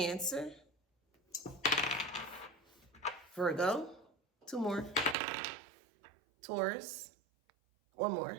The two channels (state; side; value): drops out; left; at 5.2 s